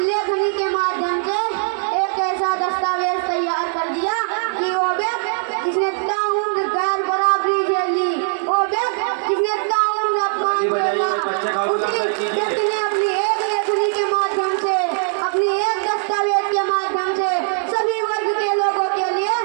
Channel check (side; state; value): left; silent; 57 dB below the other